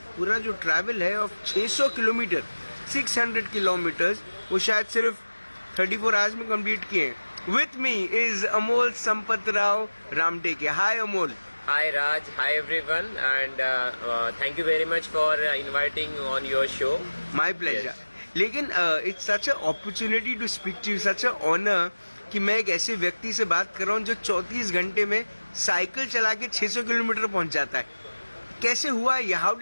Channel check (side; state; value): both; inverted; correlation -1.00